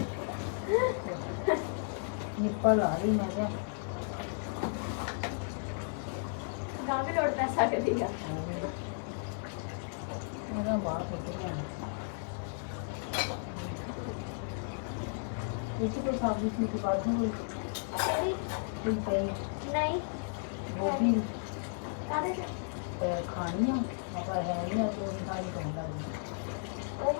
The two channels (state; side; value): silent; right; digital silence